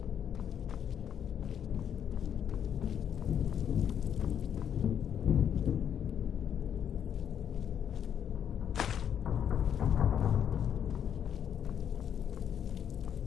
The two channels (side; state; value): right; quieter; 8.8 dB